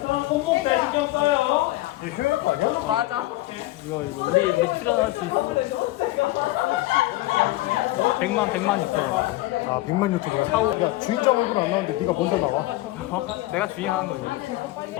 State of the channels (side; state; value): right; quieter; 18.0 dB